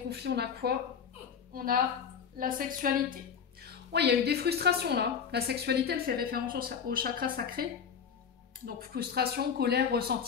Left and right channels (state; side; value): quieter; right; 7.0 dB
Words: on a quoi? On a la sexualité. Il y a eu des frustrations là. La sexualité, elle fait référence au chakra sacré. Donc frustration, colère,